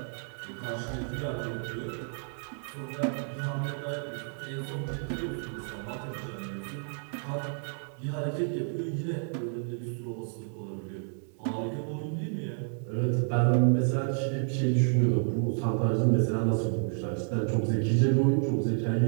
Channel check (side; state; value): left; silent; 58 dB below the other